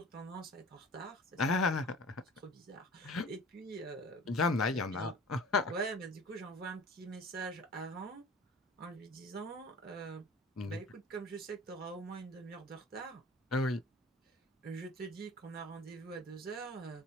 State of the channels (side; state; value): both; normal; correlation 0.43